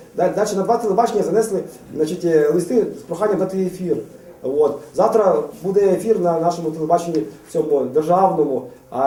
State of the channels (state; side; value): identical; both; correlation 1.00